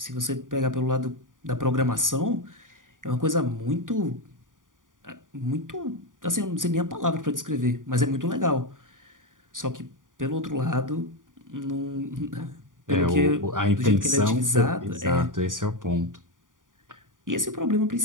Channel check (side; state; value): left; late; 0.89 ms